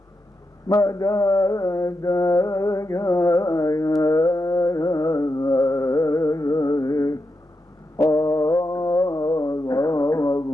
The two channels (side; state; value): both; normal; correlation 0.86